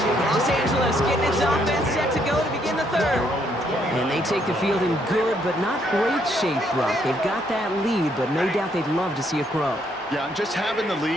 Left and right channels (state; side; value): normal; both; correlation 0.71